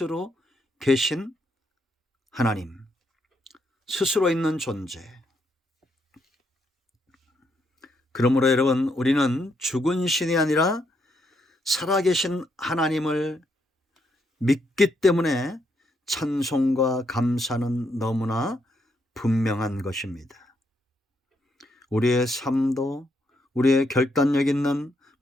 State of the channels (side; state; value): both; normal; correlation 0.77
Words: 계신 하나님, 스스로 있는 존재. 그러므로 여러분, 우리는 죽은 신이 아니라 살아계신 하나님을 믿기 때문에 찬송과 감사는 너무나 분명한 것입니다. 우리의 삶도 우리의 결단력 있는